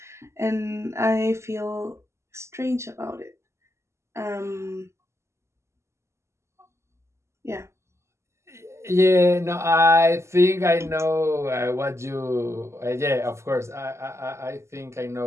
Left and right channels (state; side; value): late; left; 0.13 ms